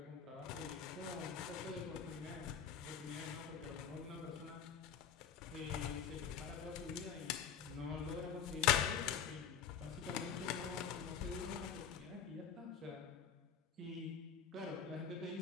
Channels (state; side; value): quieter; right; 7.8 dB